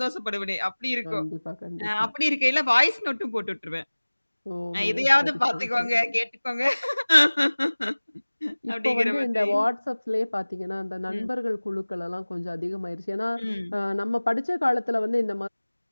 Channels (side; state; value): both; inverted; correlation -1.00